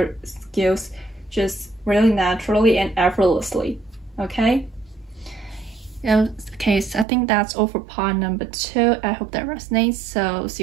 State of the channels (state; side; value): drops out; left; at 7.1 s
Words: skills just really naturally and effortlessly, okay? Yeah, okay, so I think that's all for part number 2. I hope that resonates, so see